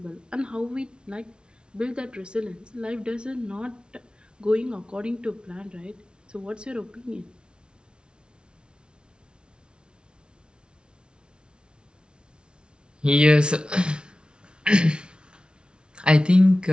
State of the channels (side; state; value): left; late; 0.056 ms